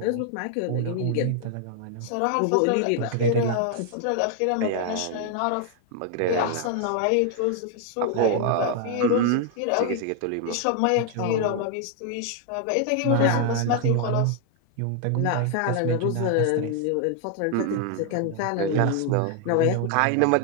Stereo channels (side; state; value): both; different; correlation 0.00